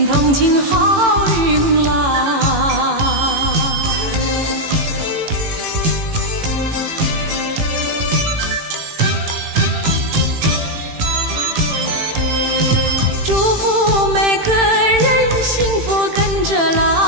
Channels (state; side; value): late; left; 18 ms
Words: 同庆好运来。祝福每个人幸福跟着